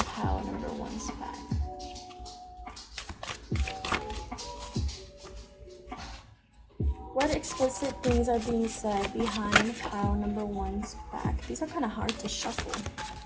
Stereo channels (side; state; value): both; identical; correlation 1.00